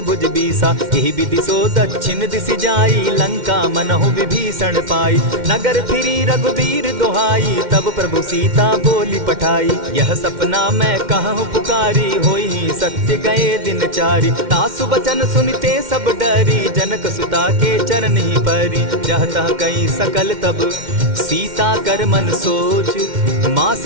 भुज बीसा। यही विधि सो दक्षिण दिशि जाई, लंका मनहु विभीषण पाई। नगर फिरी रघुवीर दोहाई, तब प्रभु सीता बोली पठाई। यह सपना मैं कहूँ पुकारी, होई सत्य गए दिन चारी। तासु बचन सुनते सब डरी, जनक सुता के चरण ही परी। जहता कई सकल तब सीता कर मन सोच, मास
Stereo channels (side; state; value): left; late; 2.1 ms